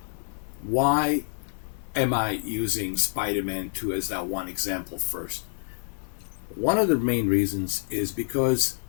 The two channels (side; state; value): right; silent; digital silence